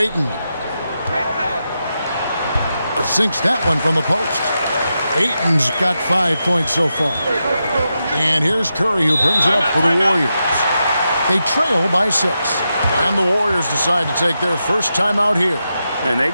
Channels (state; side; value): inverted; both; correlation -0.88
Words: Sinks that one from the post. Ayton's got 5 points so far. And here's Curry, who brings it up for the Warriors. They trail by 6. And the Warriors decide to take their first time out here. And they